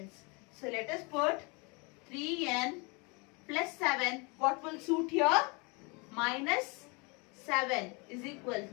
So let us put 3n plus 7. What will suit here? Minus 7 is equal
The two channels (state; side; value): quieter; right; 29.8 dB